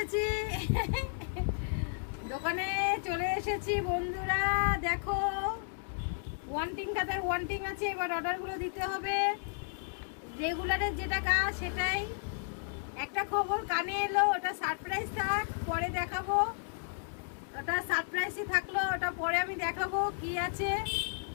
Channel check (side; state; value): right; silent; digital silence